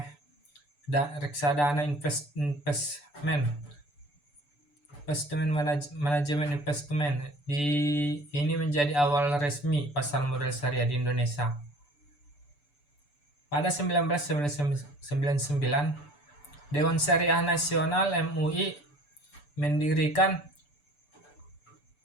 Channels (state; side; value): late; right; 6.9 ms